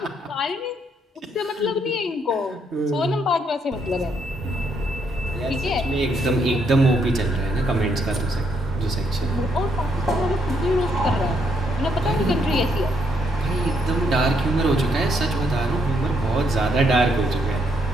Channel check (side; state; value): both; normal; correlation 0.74